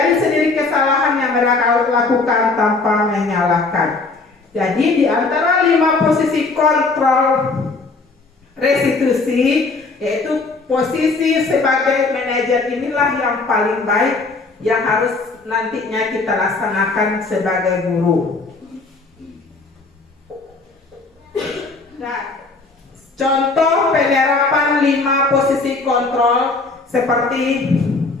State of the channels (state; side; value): quieter; right; 3.8 dB